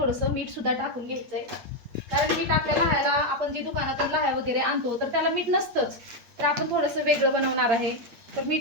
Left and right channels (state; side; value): late; left; 8.3 ms